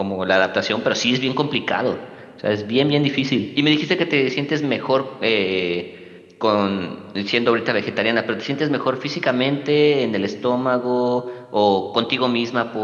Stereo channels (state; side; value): identical; both; correlation 1.00